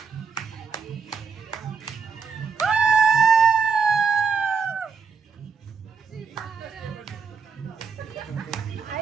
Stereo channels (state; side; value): quieter; left; 5.6 dB